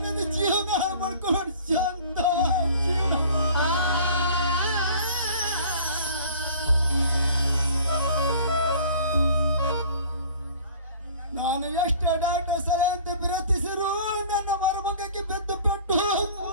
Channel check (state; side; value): inverted; both; correlation -0.48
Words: ನನ್ನ ಜೀವನ ಮಾಡ್ಕೊಂಡು ಶಾಂತ ಜೀವನ. ನಾನು ಎಷ್ಟು ಡಾಟ ಸಲಹೆ ಅಂತ ವಿರತಿಸಿರು ನನ್ನ ಮರುಮಗಕ್ಕೆ ಬೆದ್ದು ಪೆಟ್ಟು